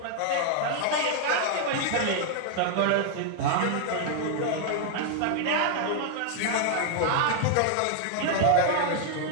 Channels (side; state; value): both; different; correlation 0.00